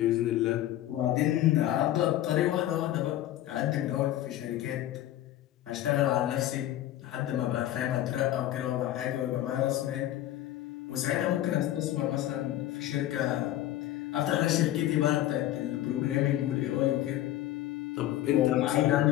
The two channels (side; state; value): right; quieter; 13.6 dB